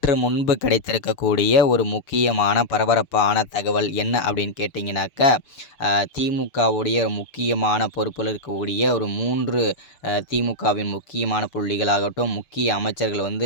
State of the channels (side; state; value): right; late; 6.7 ms